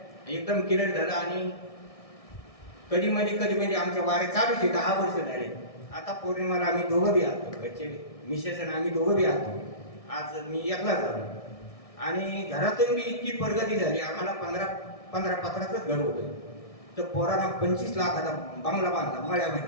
एकदम क्लिअर झालं. आणि कधी मध्ये आमच्या वाऱ्या चालूच आहे. 10 वर्ष झाले. आता पौर्णिमाला आम्ही दोघं बी आलो, घरचे मिसेस आणि आम्ही दोघं बी आलो. आज मी एकला झालो. आणि घरातून बी इतकी प्रगती झाली. आम्हाला 15 पत्राचंच घर होतं, तर पोरांना 25 लाखाचा बंगला बांधला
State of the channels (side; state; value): right; late; 1.6 ms